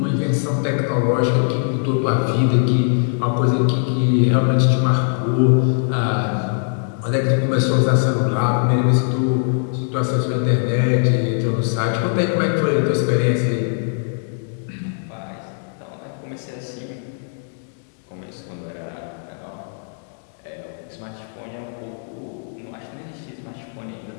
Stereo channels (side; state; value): right; silent; digital silence